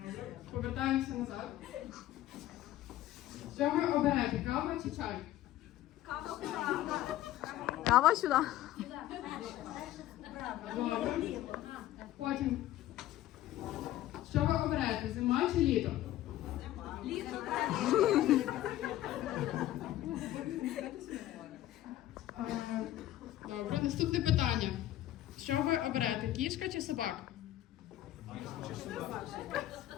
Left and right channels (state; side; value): quieter; right; 14.1 dB